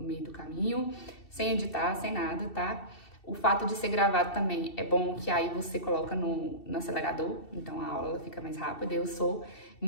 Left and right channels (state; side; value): late; right; 2.7 ms